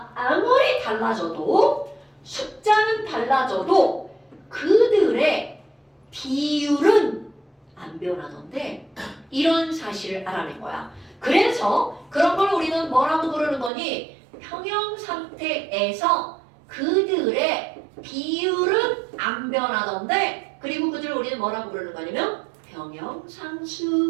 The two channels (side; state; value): left; drops out; at 13.7 s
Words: 아무리 달라져도 숫자는 달라져도 그들의 비율은 안 변하던데 이런 사실을 알아낸 거야. 그래서 그런 걸 우리는 뭐라고 부르는 거니? 평형 상태에서 그들의 비율은 안 변하던데 그리고 그들을 우리는 뭐라고 부르는 거냐면